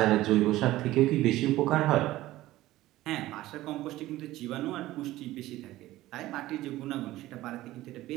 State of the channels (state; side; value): quieter; left; 16.3 dB